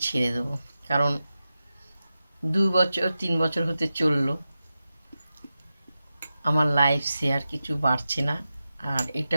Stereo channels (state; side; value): inverted; both; correlation -0.92